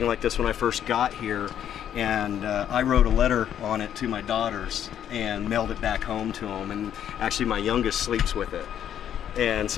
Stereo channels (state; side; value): quieter; right; 9.9 dB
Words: like this when I first got here, and I wrote a letter on it to my daughters and mailed it back home to them. And actually, my youngest sleeps with it. And